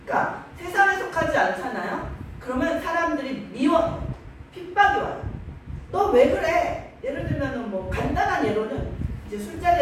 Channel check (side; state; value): both; identical; correlation 1.00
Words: 그러니까 세상에 속하지 않잖아요. 그러면 사람들이 미워해요. 핍박이 와요. 너 왜 그래? 예를 들면 뭐 간단한 예로는 이제